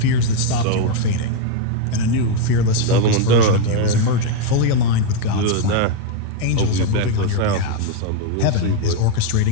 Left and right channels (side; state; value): both; different; correlation 0.01